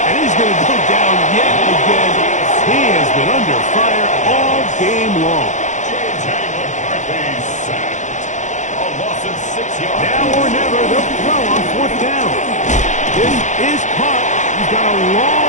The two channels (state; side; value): late; right; 0.35 ms